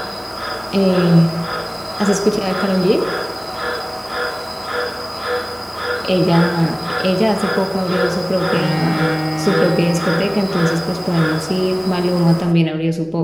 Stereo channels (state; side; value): identical; both; correlation 1.00